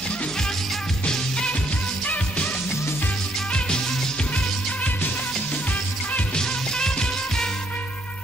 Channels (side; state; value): both; normal; correlation 0.70